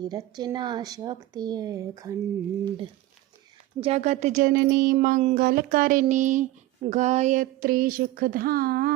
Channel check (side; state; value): left; quieter; 16.3 dB